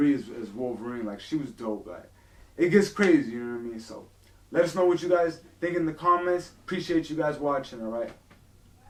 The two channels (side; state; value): both; identical; correlation 1.00